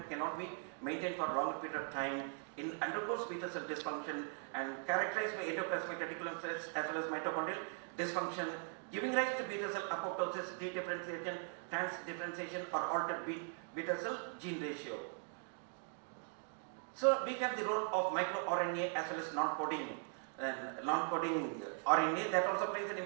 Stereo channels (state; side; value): silent; left; 51 dB below the other